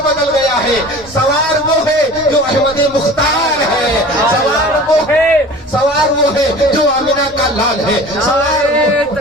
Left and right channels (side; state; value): both; normal; correlation 0.41